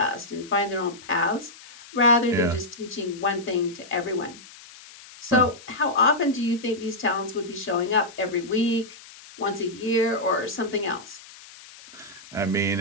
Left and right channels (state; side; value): noise; left; hiss, 19 dB below the sound